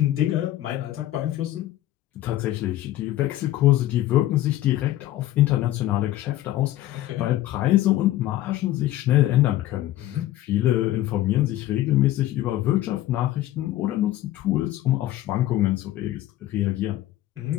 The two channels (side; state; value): right; quieter; 14.5 dB